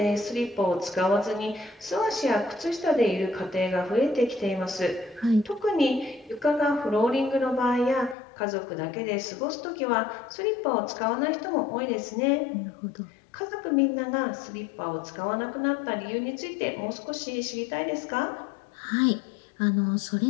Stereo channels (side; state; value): right; drops out; at 8.2 s